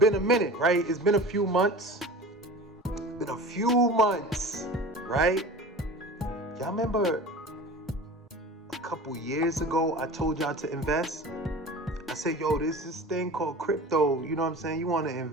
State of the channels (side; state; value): both; normal; correlation 0.37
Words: a minute, right? It's been a few months. Right? Y'all remember a couple years ago, I told y'all to invest? I said, yo, there's this thing called crypto. You know what I'm saying? You want to